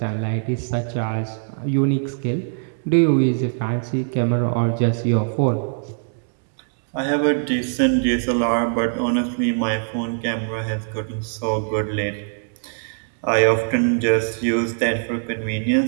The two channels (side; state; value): left; silent; digital silence